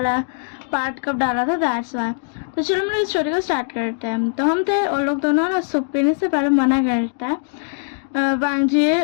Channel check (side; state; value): right; silent; digital silence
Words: पार्ट कब डाला था, दैट्स वाई। तो चलो मेरी स्टोरी को स्टार्ट करते हैं। तो हम थे और लोग दोनों ना सूप पीने से पहले मना करता है वांगजी,